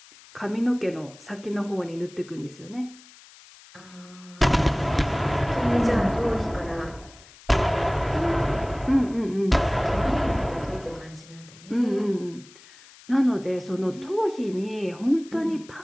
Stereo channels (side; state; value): left; noise; hiss, 23 dB below the sound